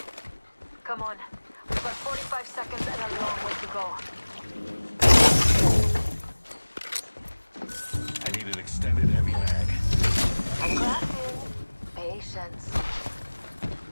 Come on. We've got 45 seconds and a long way to go. I need an extended heavy mag. Crafting. Patience.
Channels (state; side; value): inverted; both; correlation -1.00